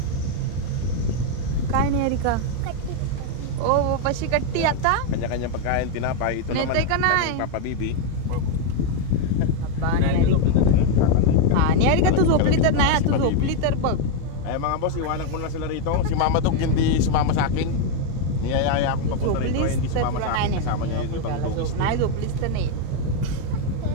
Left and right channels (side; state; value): both; different; correlation 0.01